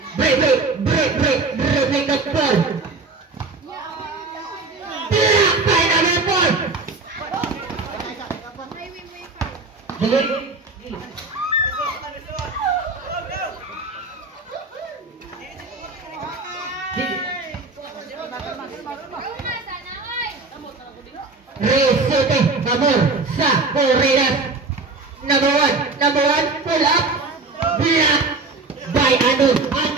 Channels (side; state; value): left; quieter; 3.7 dB